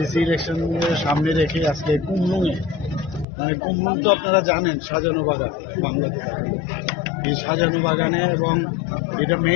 ইলেকশনের সামনে রেখে আজকে কুমলুঙে, মানে কুমলুং তো আপনারা জানেন সাজানো বাগান, বাংলাতে থাকে এই সাজানো বাগানে, এবং এটা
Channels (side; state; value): right; drops out; at 3.2 s